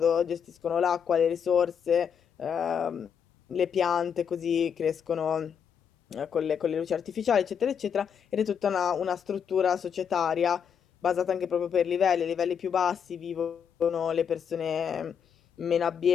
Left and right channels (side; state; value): right; quieter; 7.5 dB